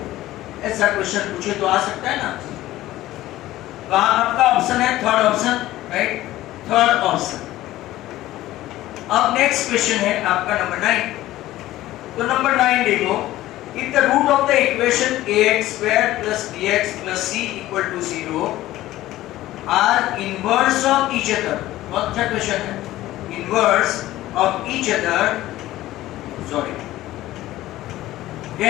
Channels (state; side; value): quieter; right; 15.6 dB